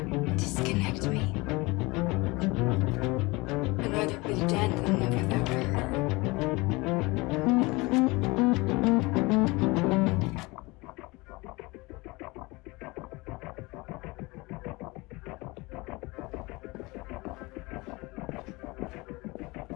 Disconnect me. I'd rather be dead than live without her.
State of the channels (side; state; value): right; quieter; 23.9 dB